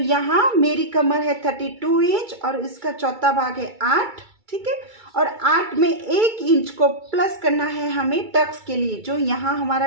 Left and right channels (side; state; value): left; late; 2.3 ms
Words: मेरी कमर है 32 इंच और इसका चौथा भाग है 8, ठीक है। और 8 में 1 इंच को प्लस करना है हमें टक्स के लिए। जो यहाँ